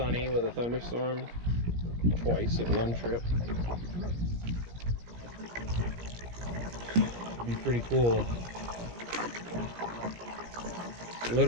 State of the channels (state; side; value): late; left; 17 ms